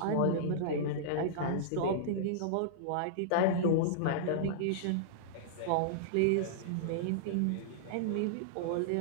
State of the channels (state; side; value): different; both; correlation -0.02